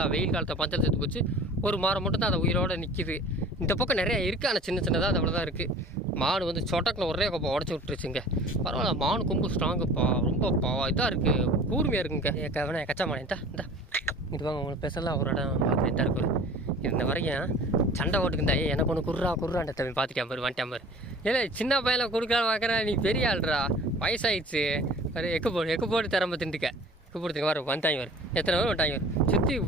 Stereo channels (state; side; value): normal; both; correlation 0.44